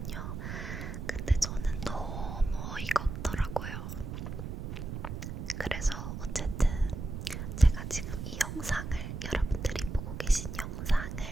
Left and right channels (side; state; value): right; noise; rumble, 6 dB below the sound